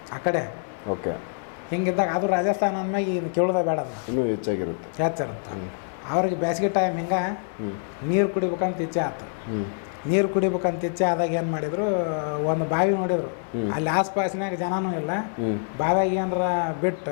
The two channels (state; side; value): silent; right; 61 dB below the other